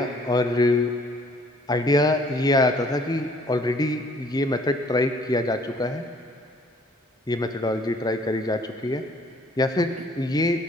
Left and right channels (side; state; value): both; normal; correlation 0.59